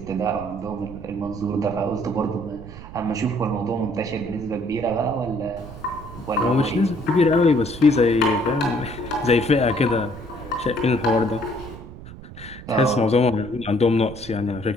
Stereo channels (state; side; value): noise; right; rumble, 14 dB below the sound